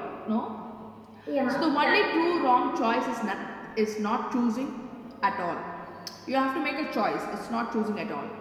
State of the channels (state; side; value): identical; both; correlation 1.00